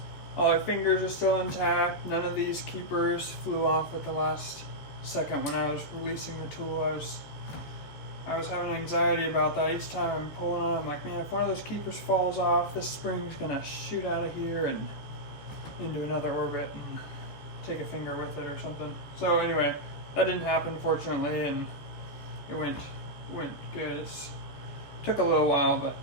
All our fingers are still intact. None of these keepers flew off at the last second when I was releasing the tool. I was having anxiety about that. Each time I'm pulling on, I'm like, man, if one of those keepers falls off, this spring's gonna shoot out of here and into another orbit and take a finger with it or something. So anyway, that didn't happen, fortunately, and it went good. It took a little while, but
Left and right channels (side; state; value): right; late; 14 ms